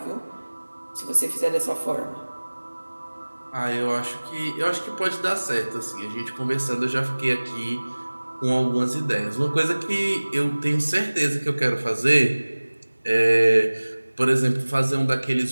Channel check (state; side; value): inverted; both; correlation -1.00